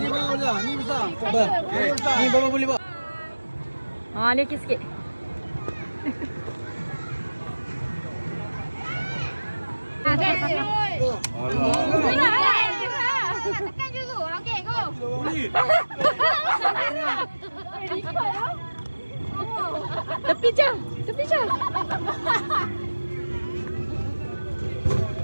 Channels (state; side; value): inverted; both; correlation -1.00